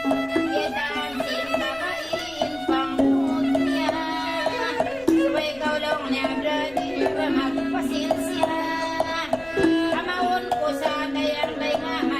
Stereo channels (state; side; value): noise; left; rumble, 23 dB below the sound